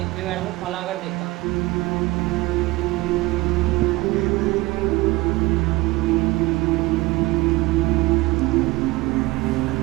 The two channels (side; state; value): left; quieter; 20.7 dB